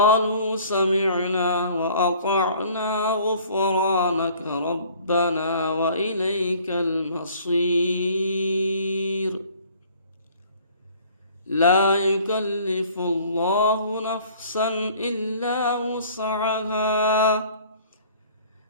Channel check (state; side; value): inverted; both; correlation -0.53